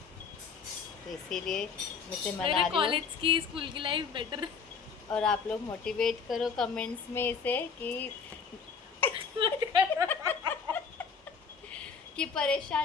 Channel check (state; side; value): quieter; right; 5.8 dB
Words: तो इसीलिए मैं से मेरे मना रही हूँ। कॉलेज की स्कूल की लाइफ बेटर। और आप लोग मोटिवेट करो कमेंट्स में इसे कि